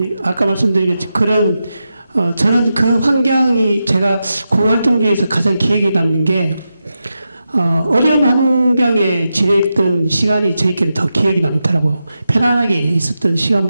아까 말씀드린 그런 저는 그 환경이 제가 공활동 중에서 가장 기억에 남는 게, 어려운 환경에 지냈던 시간이 저희끼리는 더 기억이 남더라고요. 편안하게 있었던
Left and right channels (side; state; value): both; inverted; correlation -0.89